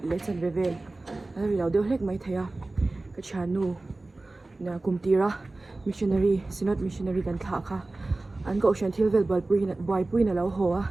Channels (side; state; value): left; quieter; 3.0 dB